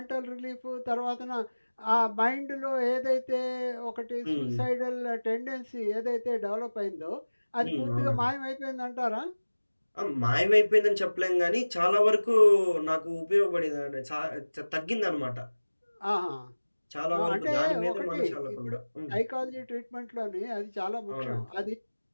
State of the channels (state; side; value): inverted; both; correlation -1.00